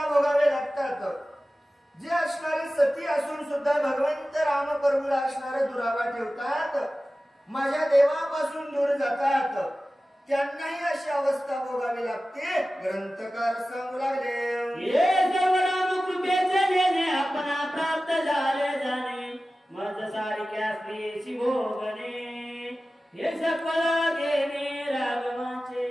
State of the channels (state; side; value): normal; both; correlation 0.96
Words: भोगावे लागतात. जे असणारे सती असून सुद्धा भगवंत राम प्रभूला असणारे दुरावा ठेवतात, माझ्या देवापासून दूर जातात, त्यांनाही अशी अवस्था भोगावी लागते. ग्रंथकार सांगू लागले. हे सर्व राम कृपेचे देणे, आपणा प्राप्त झाले जाणे, मज सारख्या स्त्रीची भोगणे, हे सकल देणे राघवाचे.